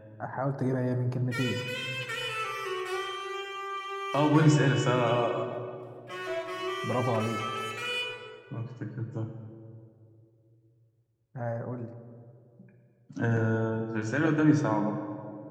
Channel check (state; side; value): identical; both; correlation 1.00